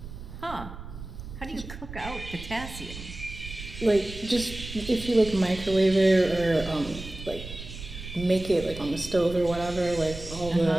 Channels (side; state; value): right; noise; rumble, 12 dB below the sound